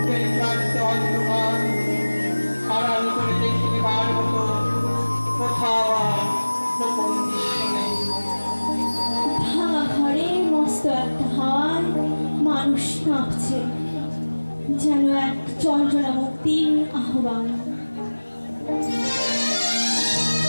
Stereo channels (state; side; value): inverted; both; correlation -1.00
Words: ক্লান্ত অন্ধকার, আড়াল করে দেখতে বার মতো কোথাও আর গোপন দৃশ্য নেই। ভাঙা ঘরে মস্ত একটা হাওয়ায় মানুষ কাঁপছে, যেন এক যন্ত্রণা মুক্তির আহ্বান।